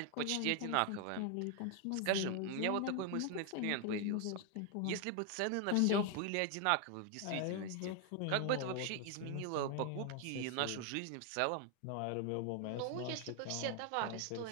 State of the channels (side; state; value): both; different; correlation 0.00